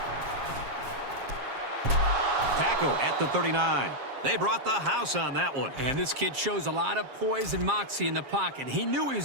Tackle at the 39. They brought the house on that one. And this kid shows a lot of poise and moxie in the pocket. He knew he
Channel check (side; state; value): left; late; 7.5 ms